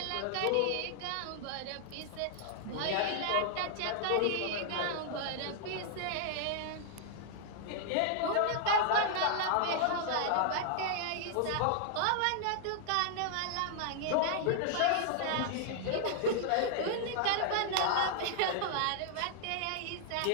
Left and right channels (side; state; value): both; different; correlation 0.00